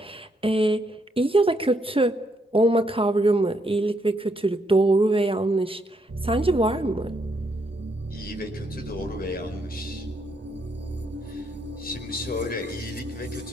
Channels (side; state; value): both; normal; correlation 0.75